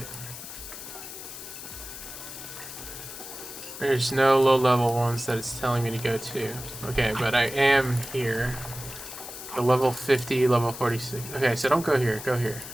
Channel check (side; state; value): left; noise; hiss, 11 dB below the sound